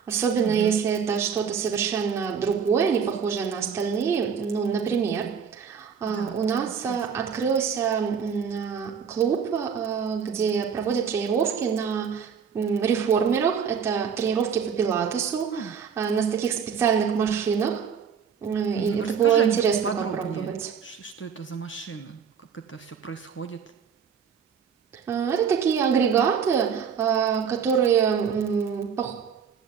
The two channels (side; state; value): left; quieter; 6.9 dB